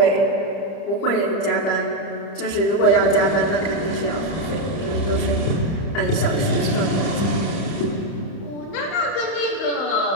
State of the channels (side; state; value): right; late; 31 ms